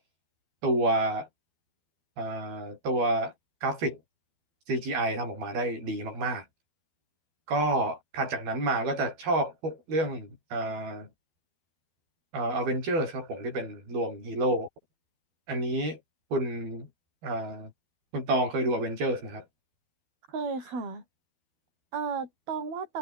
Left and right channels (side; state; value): left; late; 12 ms